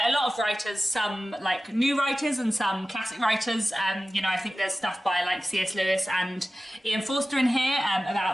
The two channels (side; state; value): both; normal; correlation 0.95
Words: a lot of writers, some like new writers and some classic writers. You know, I think there's stuff by like C.S. Lewis and Ian Forster in here